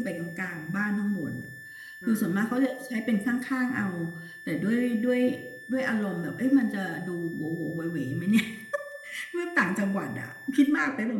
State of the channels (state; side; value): identical; both; correlation 1.00